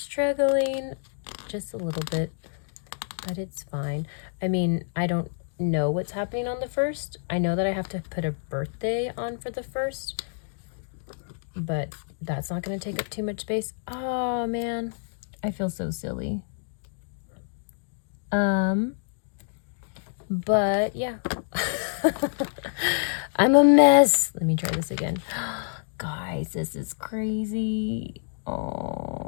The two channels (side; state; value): right; silent; digital silence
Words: just a little bit, but it's fine. I mean, I don't know what's happening on the 1st. I know that I have to put a birthday on for the 1st, but that's not going to take up too much space. Oh man, I feel so silly. But yeah. I'm a mess. Let me try this again. Guys, this is crazy.